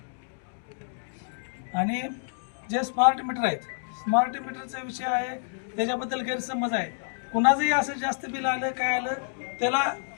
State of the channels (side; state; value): right; silent; digital silence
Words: आणि जे स्मार्ट मीटर आहेत, स्मार्ट मीटरचा विषय आहे त्याच्याबद्दल गैरसमज आहे. कुणाचंही असं जास्त बिल आलं काय आलं त्याला